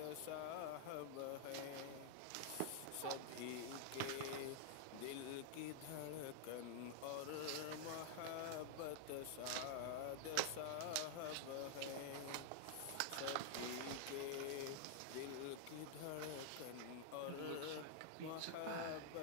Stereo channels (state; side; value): different; both; correlation -0.01